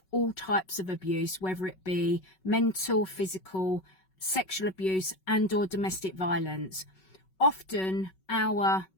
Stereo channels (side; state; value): right; late; 5.3 ms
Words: all types of abuse, whether it be mental, physical, sexual abuse and or domestic violence. Often our